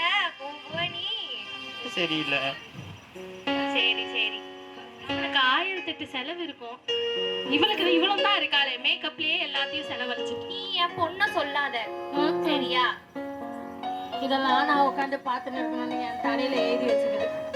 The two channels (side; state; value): both; identical; correlation 1.00